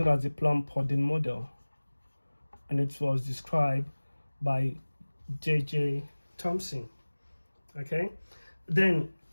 as the Plum-Pudding model, and it was described by J.J. Thomson. Okay, then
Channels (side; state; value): both; inverted; correlation -1.00